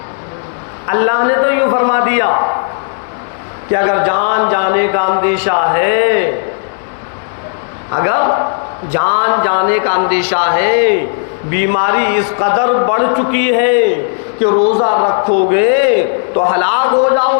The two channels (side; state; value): right; silent; digital silence